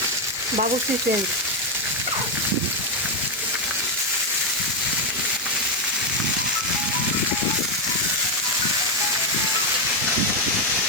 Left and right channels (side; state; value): both; normal; correlation 0.04